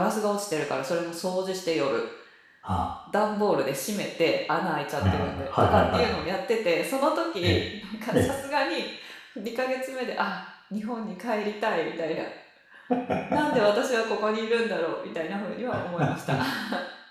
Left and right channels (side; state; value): both; identical; correlation 1.00